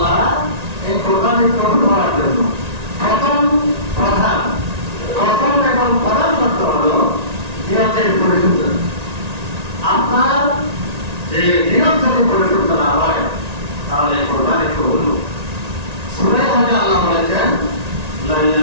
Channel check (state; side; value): late; left; 1.9 ms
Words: এই কোরবানি কবুল হওয়ার জন্য প্রথম এবং প্রধান শর্ত হলো নিয়তের পরিশুদ্ধতা। আপনার যে নিয়ত যদি পরিশুদ্ধ না হয়, তাহলে কোরবানি কবুল হবে। সূরা হজে আল্লাহ বলেছেন, লা